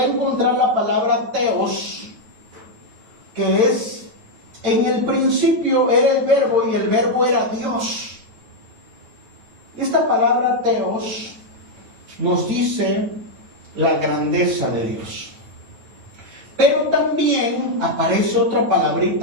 encontrar la palabra Theos, que es, en el principio era el verbo y el verbo era Dios. Esta palabra Theos nos dice la grandeza de Dios. Pero también aparece otra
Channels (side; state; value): left; late; 9.2 ms